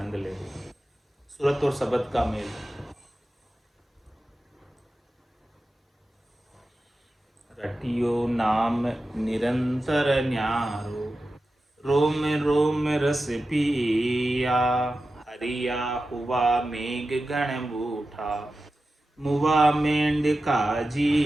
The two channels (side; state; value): both; normal; correlation 0.93